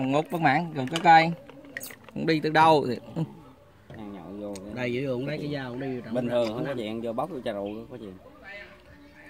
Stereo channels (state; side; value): identical; both; correlation 1.00